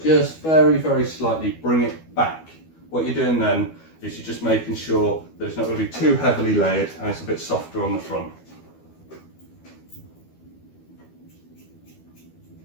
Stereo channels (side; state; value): right; late; 12 ms